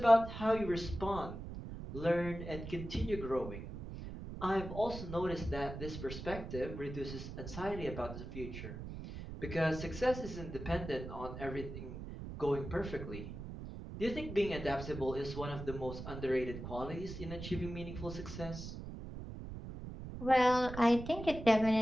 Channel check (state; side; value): noise; right; rumble, 9 dB below the sound